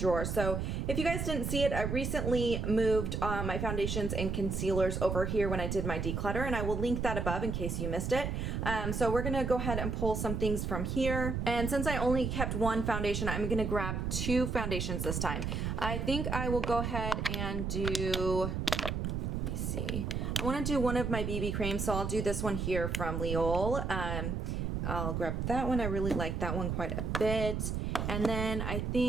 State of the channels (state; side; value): noise; right; rumble, 2 dB below the sound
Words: So if you guys didn't see it, I recently moved my foundations and concealers over here when I did my declutter, and I will link that above in case you missed it. So we're gonna go ahead and pull some things from here. And since I only kept one foundation, I'm gonna grab two foundations this time. I think I will go ahead and do, let me see. I wanna do one of my BB creams, so I'll do this one here from L'Oreal. I'll grab that one. I really like that one quite a bit. And then I